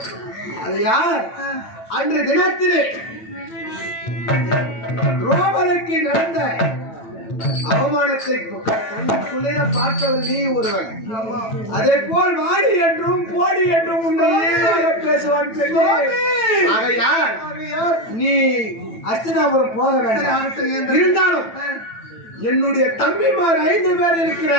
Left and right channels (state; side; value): late; right; 9.0 ms